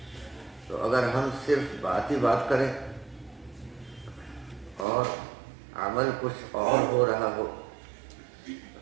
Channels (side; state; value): left; drops out; at 4.9 s